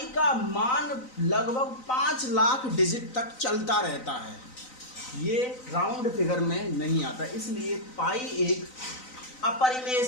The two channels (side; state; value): right; late; 3.9 ms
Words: का मान लगभग 5 लाख डिजिट तक चलता रहता है, ये राउंड फिगर में नहीं आता, इसलिए पाई एक अपरिमेय